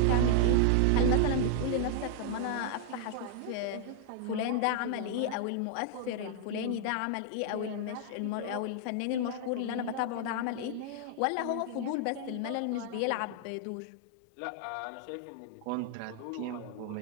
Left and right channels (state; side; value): different; both; correlation -0.01